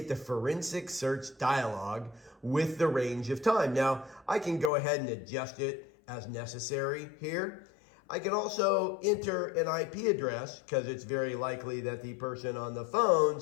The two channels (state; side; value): drops out; right; at 4.7 s